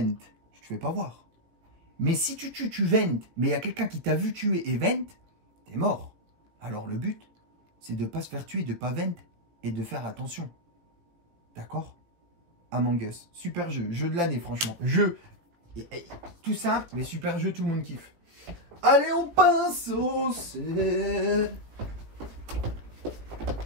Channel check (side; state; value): left; late; 18 ms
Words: tu te fais pas voir. Mais si tu tues, tu ventes, mais il y a quelqu'un qui t'a vu tuer et vente, t'es mort. Alors le but, c'est de ne pas se faire tuer, de ne pas vendre et de faire attention. D'accord? Among Us, super jeu, jeu de l'année franchement. Jeu, tout ça, mais super jeu, tout le monde kiffe. Allez, on passe au setup.